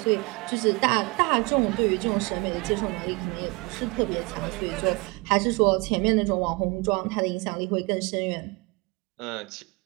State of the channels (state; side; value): quieter; left; 26.7 dB